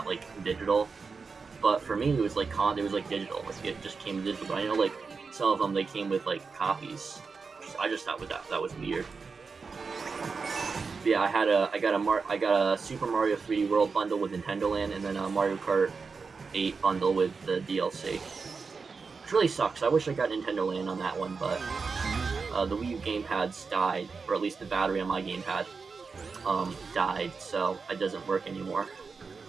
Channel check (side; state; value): left; quieter; 4.9 dB